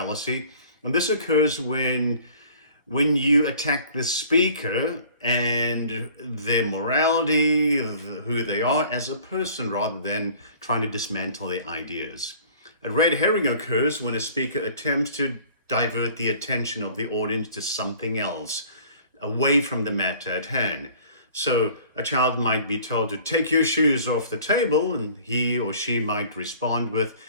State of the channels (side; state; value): both; inverted; correlation -0.50